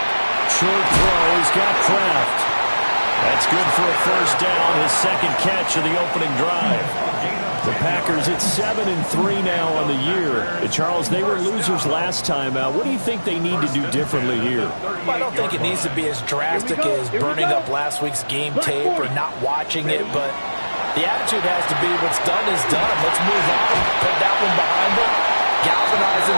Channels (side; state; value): both; inverted; correlation -1.00